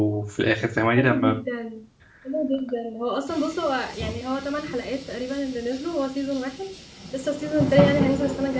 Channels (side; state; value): both; identical; correlation 1.00